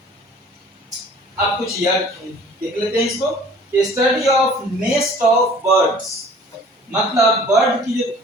अब कुछ यार देख लेते हैं इसको कि study of nest of birds, मतलब बर्ड की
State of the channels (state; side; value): normal; both; correlation 0.50